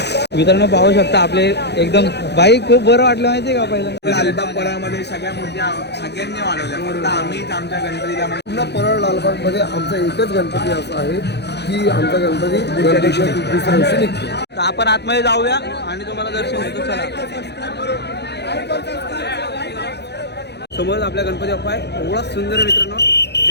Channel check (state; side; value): late; right; 0.49 ms